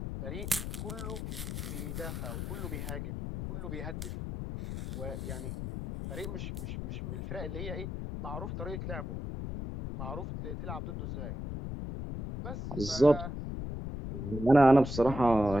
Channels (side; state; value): left; noise; rumble, 5 dB below the sound